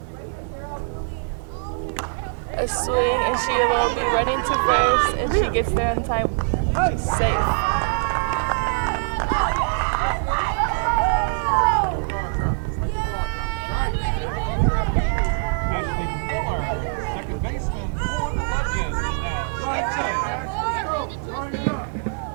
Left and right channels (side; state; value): left; silent; digital silence